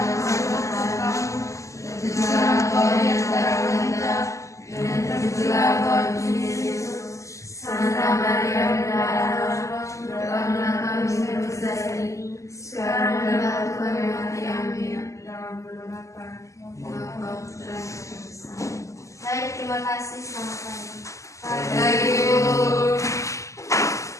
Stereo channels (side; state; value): right; late; 0.15 ms